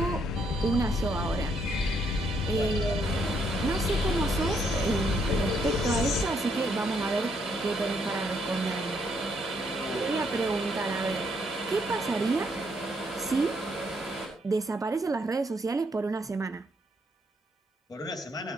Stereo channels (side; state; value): both; normal; correlation 0.73